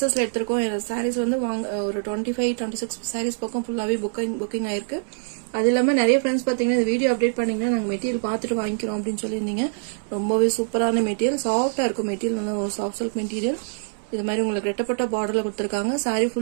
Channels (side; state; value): left; silent; 62 dB below the other